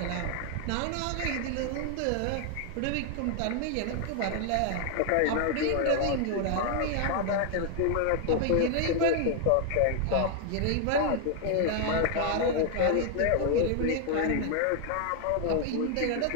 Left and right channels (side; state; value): both; different; correlation 0.00